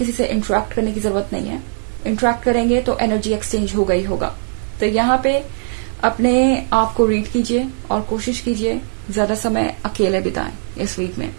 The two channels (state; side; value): silent; left; digital silence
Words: से इंटरेक्ट करने की जरूरत नहीं है। इंटरेक्ट करेंगे तो एनर्जी एक्सचेंज होगा ही होगा। तो यहाँ पे अपने आप को रीड कीजिए और कोशिश कीजिए ज्यादा समय अकेले बिताएं इस वीक में।